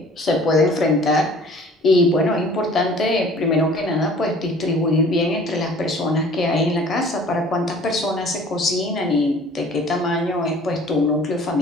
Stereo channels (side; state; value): both; normal; correlation 0.50